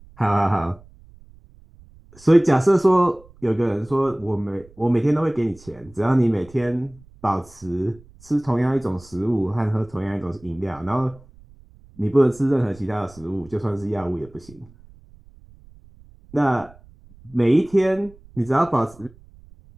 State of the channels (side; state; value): right; noise; rumble, 25 dB below the sound